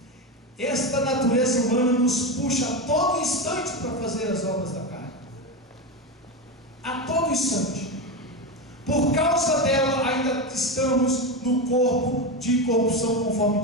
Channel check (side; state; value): both; normal; correlation 0.16